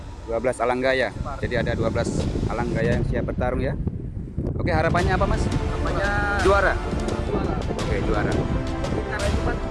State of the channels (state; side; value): identical; both; correlation 1.00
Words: 12 Alanggaya. Jadi ada 12 Alanggaya yang siap bertarung ya. Oke, harapannya apa Mas? Harapannya Juara. Oke, juara.